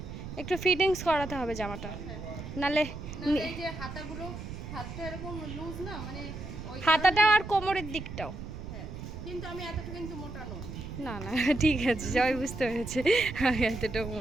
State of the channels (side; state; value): right; noise; rumble, 9 dB below the sound